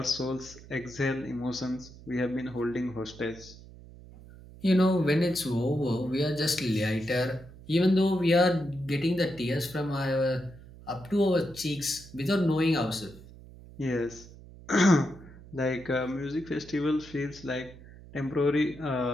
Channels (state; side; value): noise; right; hum, 19 dB below the sound